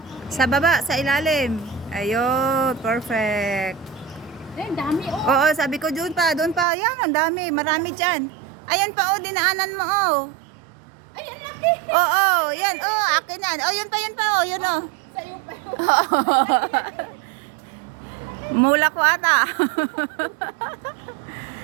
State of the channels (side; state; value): left; drops out; at 6.7 s